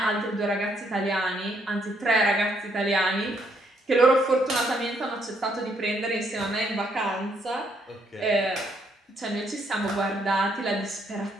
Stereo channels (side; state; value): both; normal; correlation 0.71